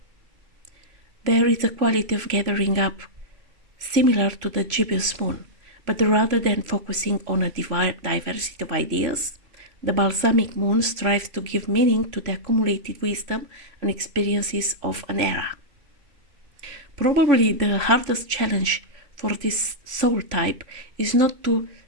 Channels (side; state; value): left; late; 3.0 ms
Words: There is a quality of gathering up similar to the gibbous moon, but rather than focusing on a diversity of ideas, the balsamic moon strives to give meaning to the accumulated wisdom and experiences of an era. Probably the hardest challenge for this soul type is not to